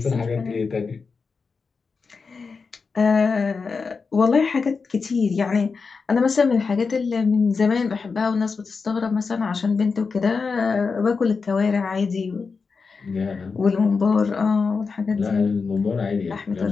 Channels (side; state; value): right; quieter; 4.9 dB